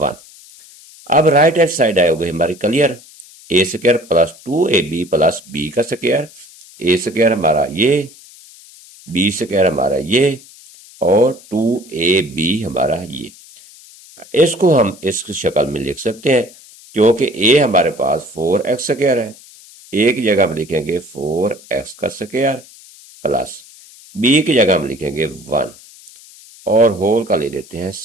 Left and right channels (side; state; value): left; noise; hiss, 22 dB below the sound